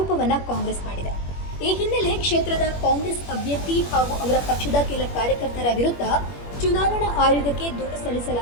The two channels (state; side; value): late; right; 21 ms